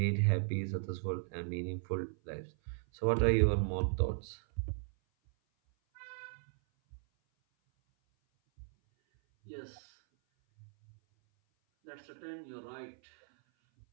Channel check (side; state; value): left; silent; 54 dB below the other